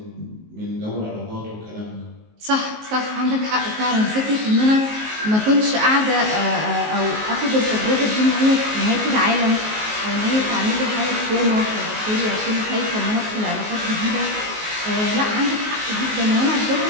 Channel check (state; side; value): late; left; 19 ms